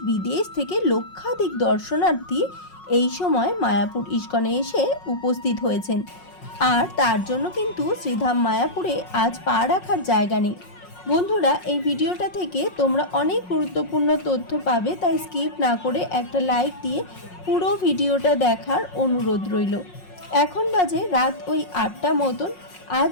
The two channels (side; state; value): right; late; 5.5 ms